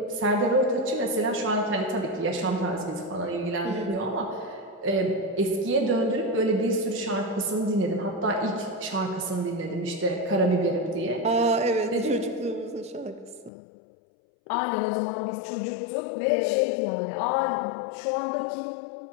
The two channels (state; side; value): drops out; right; at 13.5 s